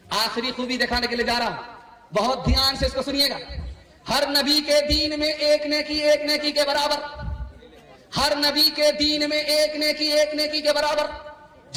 آخری خوبی دکھانے کے لیے جا رہا ہوں, بہت دھیان سے اس کو سنیے گا. ہر نبی کے دین میں ایک نیکی کے برابر, ہر نبی کے دین میں ایک نیکی کے برابر.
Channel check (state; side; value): identical; both; correlation 1.00